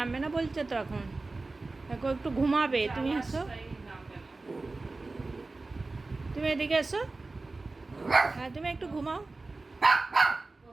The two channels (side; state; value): left; quieter; 3.4 dB